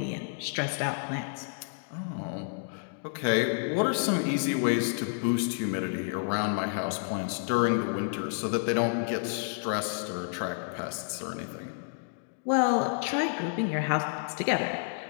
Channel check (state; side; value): silent; right; digital silence